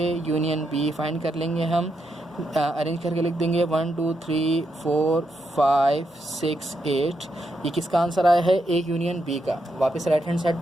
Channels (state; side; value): normal; both; correlation 0.82